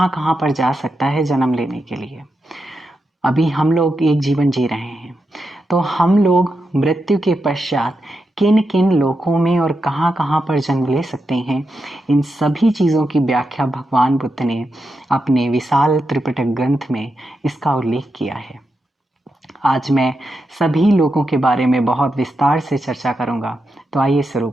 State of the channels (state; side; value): normal; both; correlation 0.87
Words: कहाँ पर जा सकता है जन्म लेने के लिए। अभी हम लोग एक जीवन जी रहे हैं, तो हम लोग मृत्यु के पश्चात किन किन लोकों में और कहाँ कहाँ पर जन्म ले सकते हैं, इन सभी चीज़ों की व्याख्या भगवान बुद्ध ने अपने विशाल त्रिपिटक ग्रंथ में इसका उल्लेख किया है। आज मैं सभी लोकों के बारे में बहुत विस्तार से चर्चा करूंगा, तो आइए शुरू